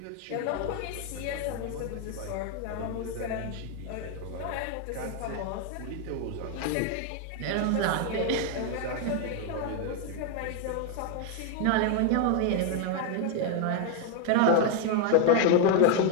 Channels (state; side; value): different; both; correlation 0.01